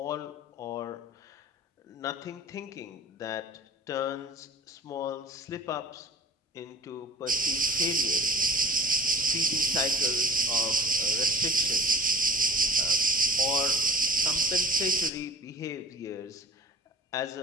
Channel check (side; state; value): both; normal; correlation 0.45